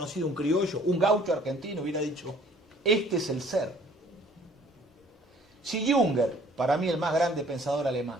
un criollo, un gaucho argentino, hubiera dicho, este es el ser. Si Junger, para mí el más grande pensador alemán,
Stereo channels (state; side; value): normal; both; correlation 0.56